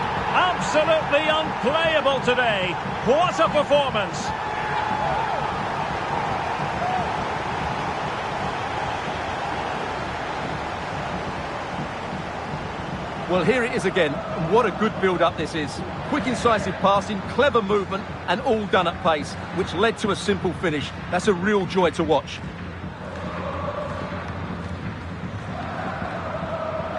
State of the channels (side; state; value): both; identical; correlation 1.00